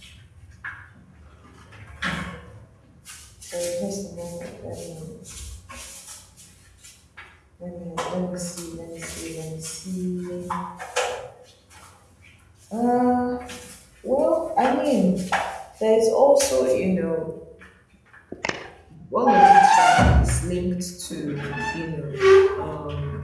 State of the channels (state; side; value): identical; both; correlation 1.00